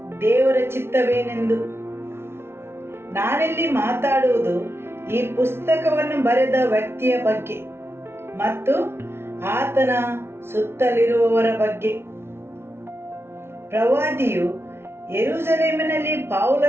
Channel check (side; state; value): left; late; 0.12 ms